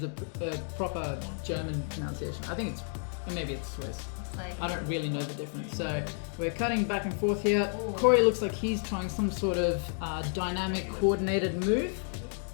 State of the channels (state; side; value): silent; right; 57 dB below the other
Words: a proper German pronunciation. I think maybe it's Swiss. I don't really know the difference. So we're cutting back and forth here. Ooh. Corey looks like he's trying some sort of dynamic coordinated move.